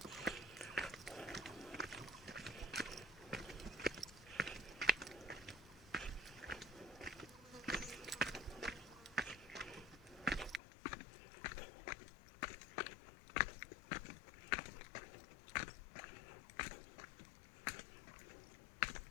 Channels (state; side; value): drops out; right; at 10.6 s